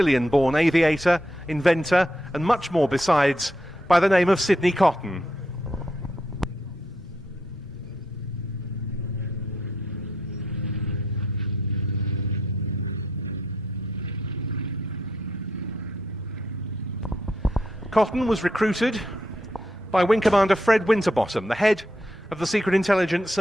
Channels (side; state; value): both; normal; correlation 0.78